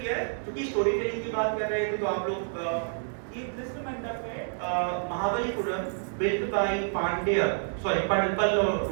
है, क्योंकि स्टोरी टेलिंग की बात कर रहे थे, तो आप लोग this मंडप है Mahabalipuram, built by Pallava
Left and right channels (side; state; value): left; silent; 59 dB below the other